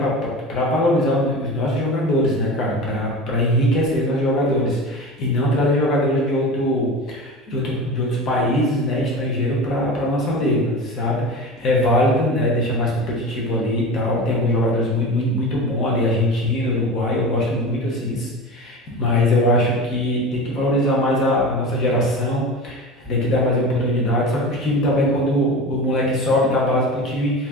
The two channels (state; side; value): normal; both; correlation 0.31